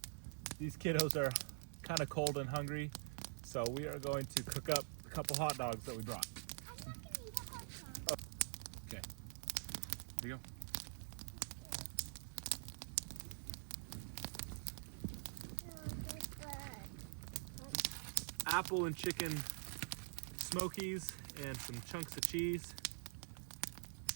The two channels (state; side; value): silent; left; digital silence